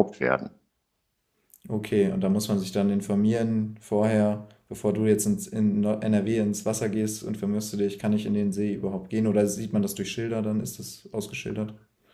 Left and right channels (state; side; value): identical; both; correlation 1.00